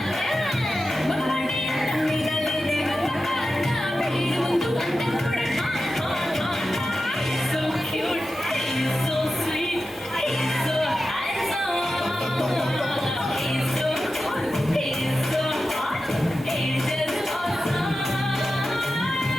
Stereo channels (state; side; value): normal; both; correlation 0.92